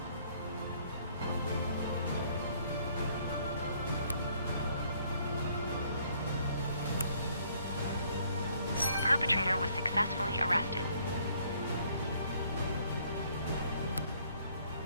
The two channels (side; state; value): both; inverted; correlation -0.64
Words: The perpetrator was successfully arrested.